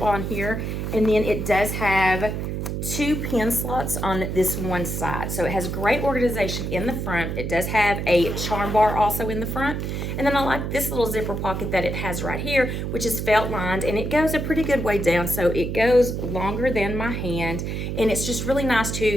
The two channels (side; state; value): right; noise; hum, 3 dB below the sound